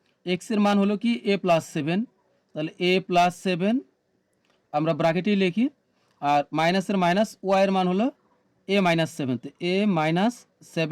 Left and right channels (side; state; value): both; identical; correlation 1.00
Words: এক্সের মান হলো কি এ প্লাস 7, তাহলে এ প্লাস 7 আমরা ব্র্যাকেটেই লিখি, আর মাইনাসের মাইনাস ওয়াইয়ের মান হলো এ মাইনাস 7, তো এ মাইনাস